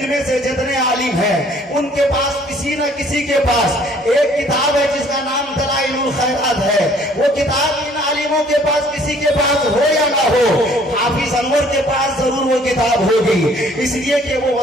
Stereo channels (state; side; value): normal; both; correlation 0.58